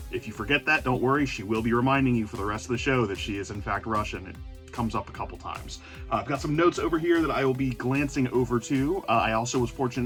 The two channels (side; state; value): both; identical; correlation 1.00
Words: If you forget that, don't worry, she will be reminding you for the rest of the show that she is in fact Russian. It comes up a couple times. I've got some notes over here that I will be glancing over to. I also was fortunate